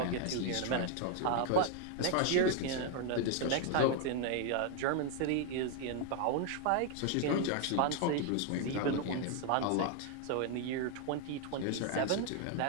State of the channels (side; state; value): both; different; correlation 0.00